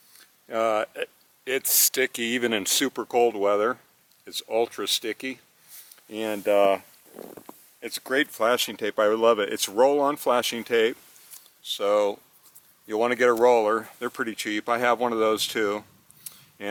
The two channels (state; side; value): identical; both; correlation 1.00